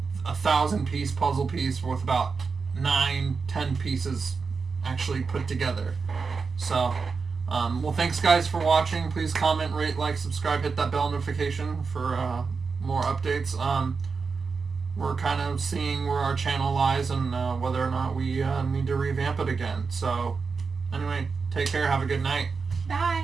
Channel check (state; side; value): quieter; left; 5.0 dB